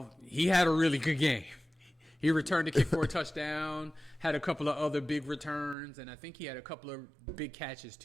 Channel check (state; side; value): drops out; left; at 5.8 s